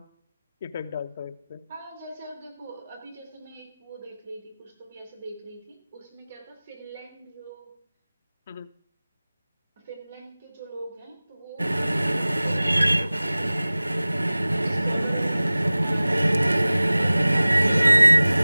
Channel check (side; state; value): both; inverted; correlation -0.98